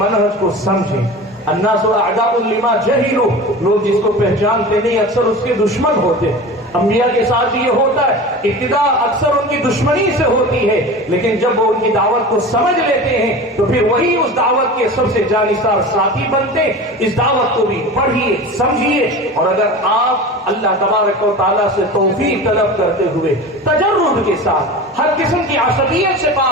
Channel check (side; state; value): both; normal; correlation 0.33